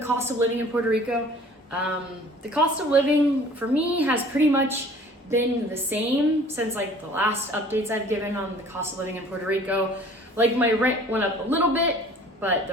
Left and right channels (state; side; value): normal; both; correlation 0.50